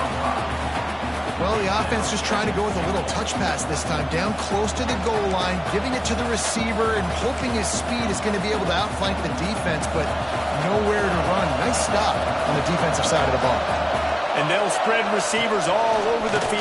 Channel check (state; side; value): identical; both; correlation 1.00